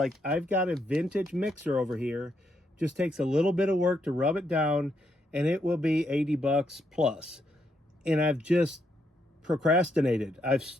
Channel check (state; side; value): normal; both; correlation 0.77